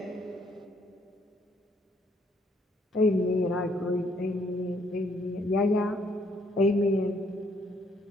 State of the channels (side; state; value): both; normal; correlation 0.68